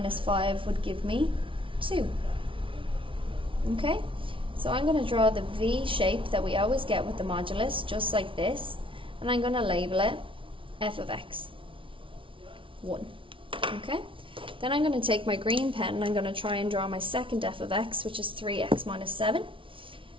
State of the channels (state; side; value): late; left; 0.25 ms